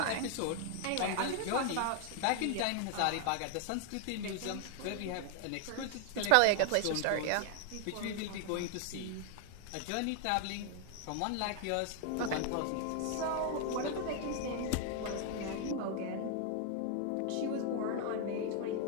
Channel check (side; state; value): both; different; correlation 0.00